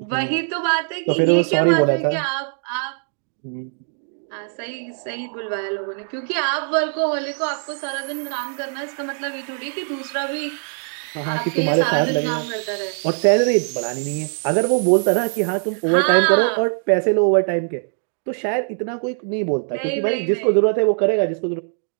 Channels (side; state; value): left; silent; 61 dB below the other